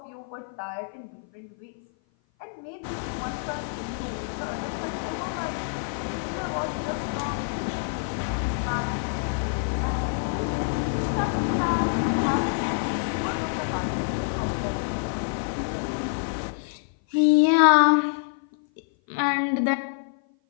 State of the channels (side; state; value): right; silent; 56 dB below the other